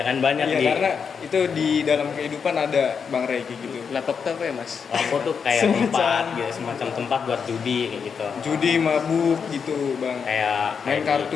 kan banyak Iya, di karena itu di dalam kehidupan ada Bang Ray kayak gitu. Laptop tuh apa ya mas? Lapo tuh kayak Semacam- tempat gitu, semacam tempat buat judi kayak gitu. Judi mabuk gitu, Bang. Kayak Main di-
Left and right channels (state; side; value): quieter; right; 6.3 dB